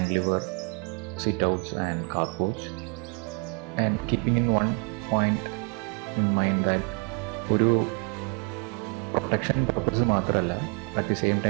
sit-outs and carporch, and keeping in one point in mind that ഒരു protection purpose മാത്രമല്ല, at the same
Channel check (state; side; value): quieter; left; 35.7 dB